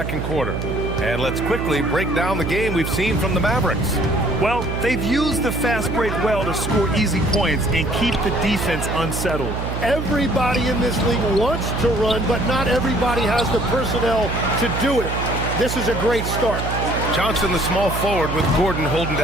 quarter. And let's quickly break down the game we've seen from the Mavericks. Well, they've used the fast break well to score easy points and keep the defense unsettled. Everybody in this league wants to run, but not everybody has the personnel to do it. This is a great start. Johnson, the small forward, with Gordon holding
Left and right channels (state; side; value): noise; right; hum, 4 dB below the sound